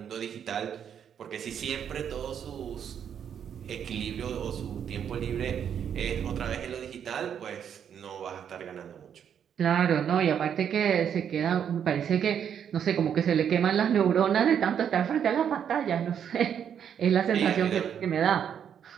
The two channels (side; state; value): left; quieter; 8.4 dB